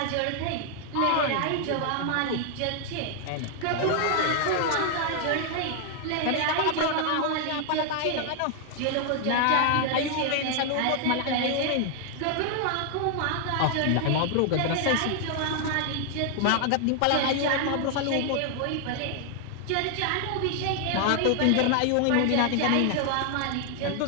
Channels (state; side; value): different; both; correlation 0.00